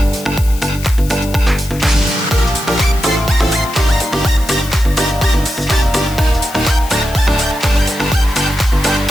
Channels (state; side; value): noise; left; hiss, 16 dB below the sound